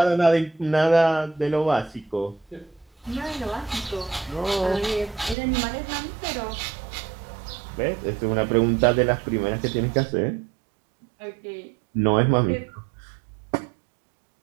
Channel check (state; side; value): drops out; left; at 5.4 s